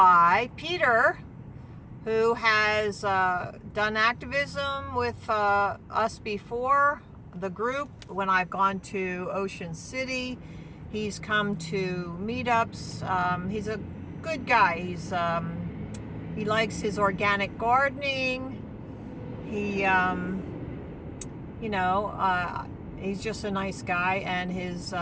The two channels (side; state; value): both; identical; correlation 1.00